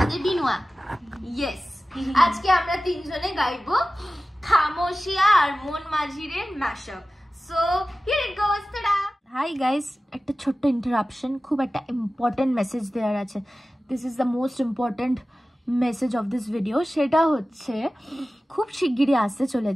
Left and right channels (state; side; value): normal; both; correlation 0.96